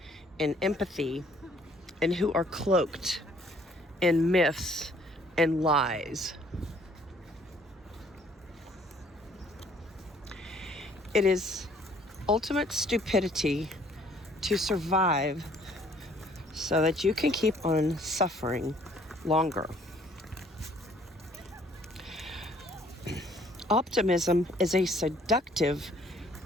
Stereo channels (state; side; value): normal; both; correlation 0.61